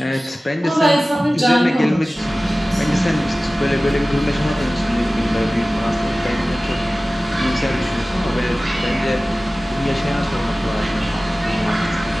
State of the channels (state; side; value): normal; both; correlation 0.97